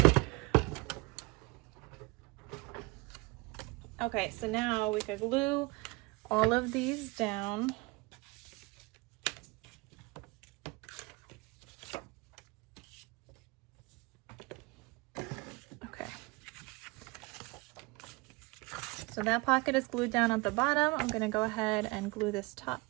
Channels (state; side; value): quieter; left; 25.1 dB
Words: Okay, so now we could glue all of these down. Okay. So that pocket is glued down at the bottom. I'm gonna go ahead and glue this top